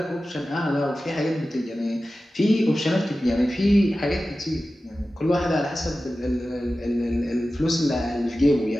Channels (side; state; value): both; normal; correlation 0.95